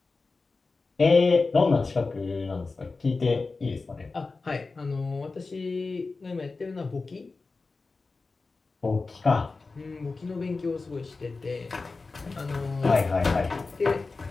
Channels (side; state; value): right; quieter; 3.9 dB